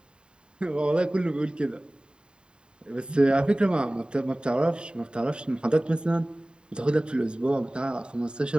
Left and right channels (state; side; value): late; left; 0.050 ms